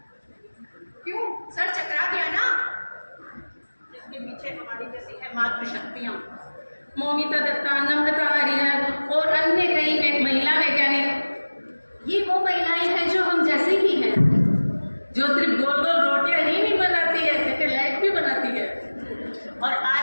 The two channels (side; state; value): both; inverted; correlation -1.00